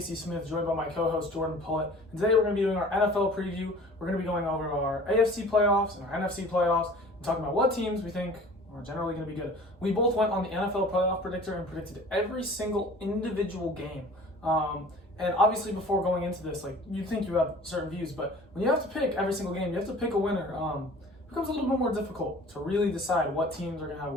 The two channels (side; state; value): both; normal; correlation 0.46